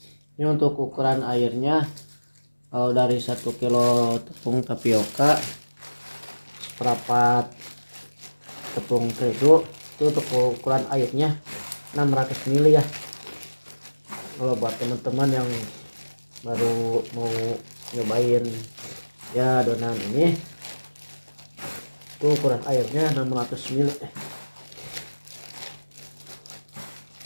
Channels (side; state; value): both; inverted; correlation -1.00